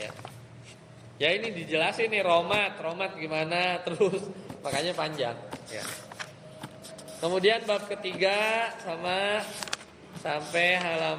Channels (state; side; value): identical; both; correlation 1.00